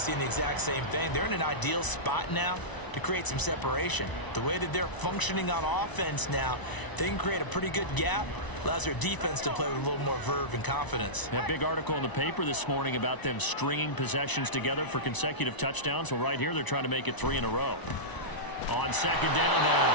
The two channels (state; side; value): late; right; 1.0 ms